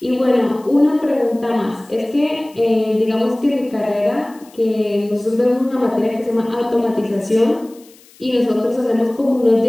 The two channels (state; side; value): noise; left; hiss, 27 dB below the sound